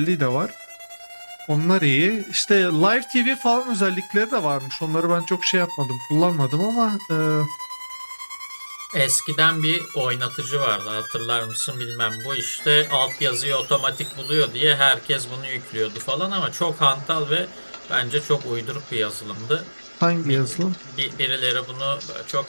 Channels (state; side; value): inverted; both; correlation -1.00